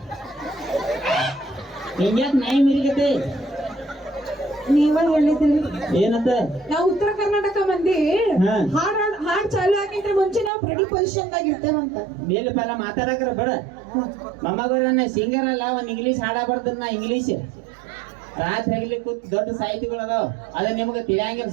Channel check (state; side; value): drops out; left; at 10.5 s